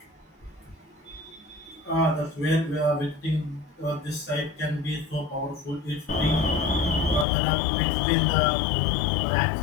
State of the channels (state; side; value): drops out; right; at 7.2 s